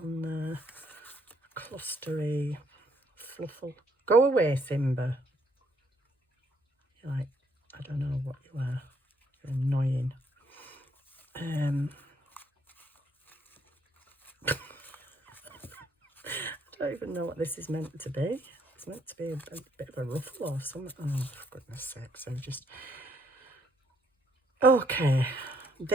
there? Clustery, fluffle. Go away, Simba. You're like, I don't know what you are. You're annoying. I don't even know what this is meant to be. It's meant to be a bit of a ruffle or something. Oh, for goodness sake. So just... Okay,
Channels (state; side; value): normal; both; correlation 0.70